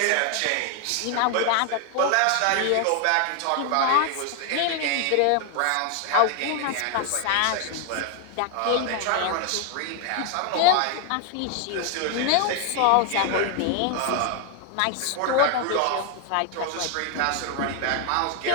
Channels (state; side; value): different; both; correlation 0.00